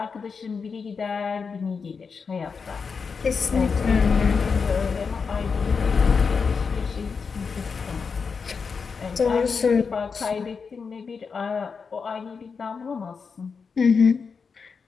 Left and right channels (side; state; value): right; quieter; 5.4 dB